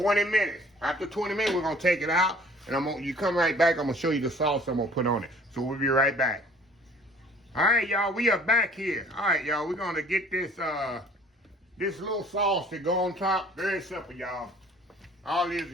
minutes. After 20 minutes, we're gonna take it out, and you come right back. I'm gonna show you the sauce I'm gonna put on it. So we'll be right back. All right, y'all, we are back here. All right, y'all, we're gonna get this this little sauce to go on top. Very simple, y'all. All it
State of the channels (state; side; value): normal; both; correlation 0.52